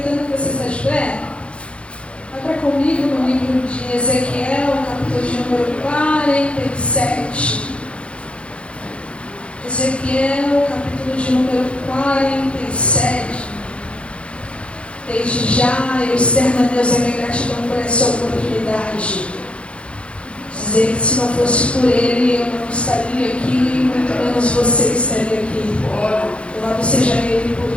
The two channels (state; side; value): late; right; 0.060 ms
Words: que você está de pé, abra comigo no livro de Ezequiel, capítulo de número 47. Ezequiel, capítulo de número 47. Desde já eu externo a Deus a minha gratidão por essa oportunidade. Dizer que se não fosse por Ele, eu não estaria aqui, muito menos você estaria aqui. Louvado seja Ele